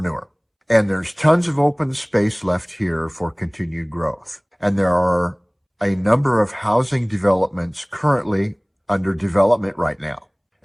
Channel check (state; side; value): identical; both; correlation 1.00